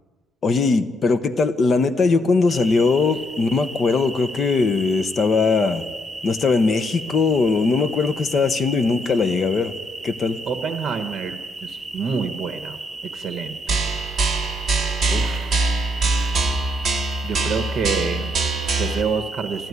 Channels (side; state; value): both; normal; correlation 0.75